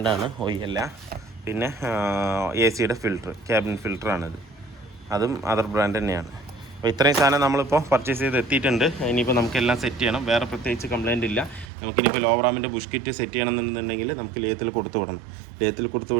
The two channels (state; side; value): drops out; left; at 11.7 s